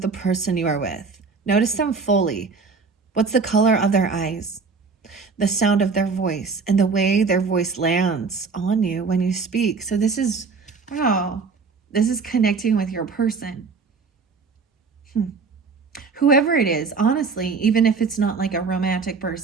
the person you are with. Notice them fully. What's the color of their eyes? The sound of their voice and the way their voice lands on you when you speak. So this is, wow, this is connecting with your person. Whoever it is, honestly, even if it's not like a romantic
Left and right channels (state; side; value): quieter; left; 4.8 dB